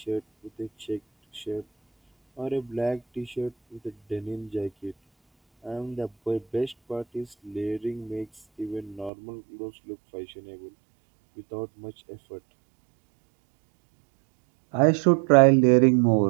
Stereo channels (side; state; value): left; drops out; at 9.1 s